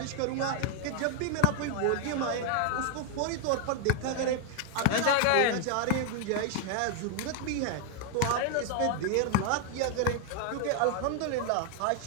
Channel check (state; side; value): different; both; correlation 0.00